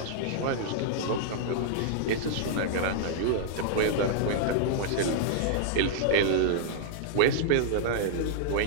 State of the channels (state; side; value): different; both; correlation -0.01